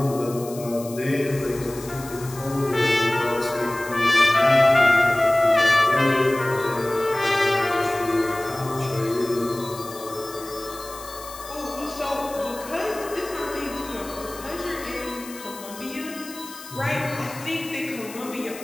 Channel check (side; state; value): left; noise; hiss, 15 dB below the sound